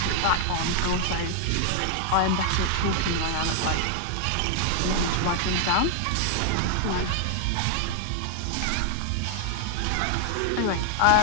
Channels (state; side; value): different; both; correlation 0.00